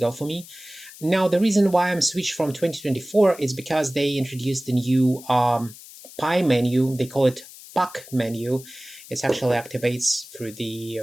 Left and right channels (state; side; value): noise; left; hiss, 18 dB below the sound